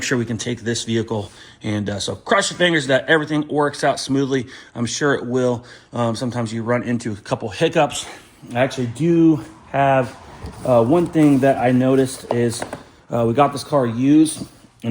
sure we can take this vehicle. And so cross your fingers that everything works out smoothly. I'm sure it will. Sometimes you run into a couple hiccups. I actually do have one thing that I noticed is we got this car used,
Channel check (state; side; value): identical; both; correlation 1.00